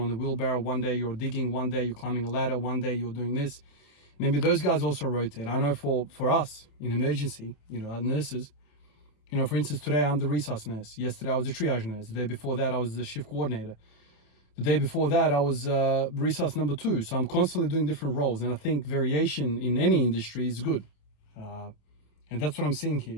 the wheelbarrow, one day you're digging, one day you're climbing a ladder, one day you're doing this. Maybe those guys also rotate. I know for us in emergency, you know, nurses, you know, for instance, today I'm the resource nurse. Yesterday I was the triage nurse. The day before that I was the shift coordinator. The day before that I was resource number 2. So I'm constantly doing different roles, and I think variation in any industry is good. And that's what I'm seeing here.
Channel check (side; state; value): right; late; 27 ms